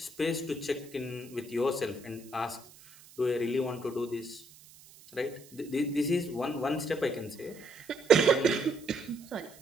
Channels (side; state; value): right; noise; hiss, 22 dB below the sound